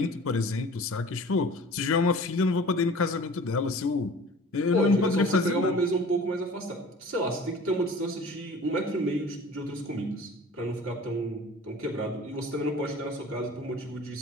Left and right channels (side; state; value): both; normal; correlation 0.44